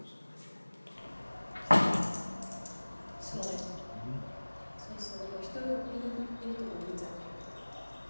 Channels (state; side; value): inverted; both; correlation -1.00